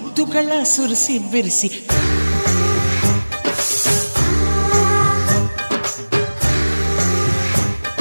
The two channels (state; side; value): inverted; both; correlation -1.00